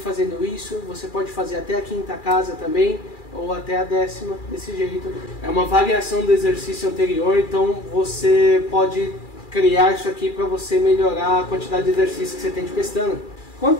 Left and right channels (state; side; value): late; right; 2.4 ms